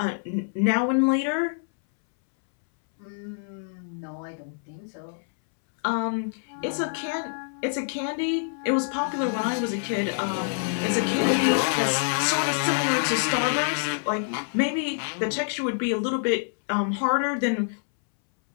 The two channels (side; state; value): right; silent; 61 dB below the other